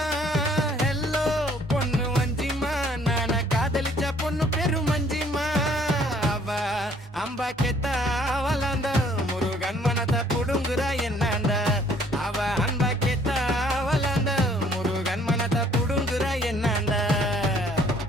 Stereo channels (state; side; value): normal; both; correlation 0.60